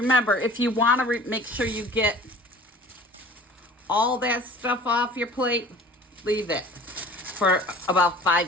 if you want to make sure you get all that stuff off your plate, leave it for about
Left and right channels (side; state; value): both; normal; correlation 0.46